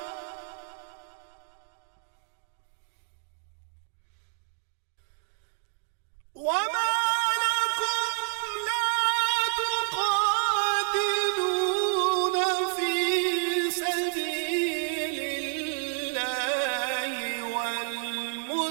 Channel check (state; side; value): silent; left; digital silence